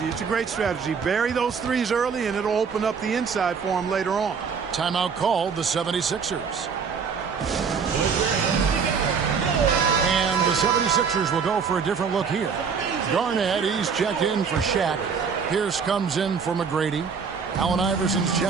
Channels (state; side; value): quieter; left; 6.0 dB